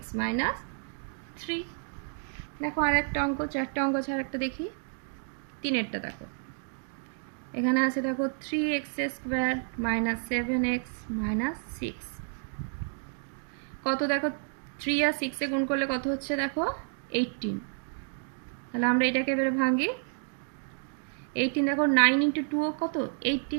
minus 3। দেখো আর একটা অঙ্ক, চারটা অঙ্ক ছাড়া একটা দেখি, তিনেরটা দেখো এখানে আছে। দেখো 3x square minus 7x minus 6 কত, দেখো 3 আর 6 এ গুণ করলে কত হচ্ছে দেখো 18। তাহলে আমরা এটাকে এবারে ভাঙি, 18 দেখো 9 ইন্টু 2 কত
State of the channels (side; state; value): left; silent; 58 dB below the other